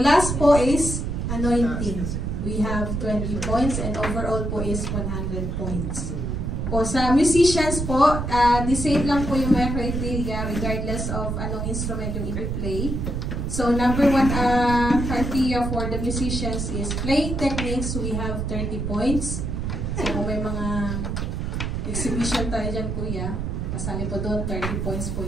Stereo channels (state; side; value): noise; right; rumble, 2 dB below the sound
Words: po is anointing. We have 20 points and overall po is 100 points. Po sa musicians po, the same lang po yung mga criteria regardless of anong instrument yung i-play. So number 1 criteria for the musicians is playing techniques. We have 30 points. So kung may mga exhibition tayo dyan, kuya, kasali po doon, 30 points po